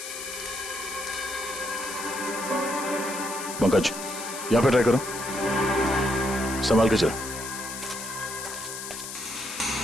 पंकज, यहाँ पे ट्राई करो, संभाल के चलो।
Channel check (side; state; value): left; noise; hiss, 8 dB below the sound